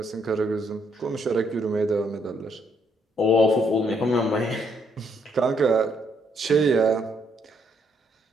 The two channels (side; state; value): both; normal; correlation 0.71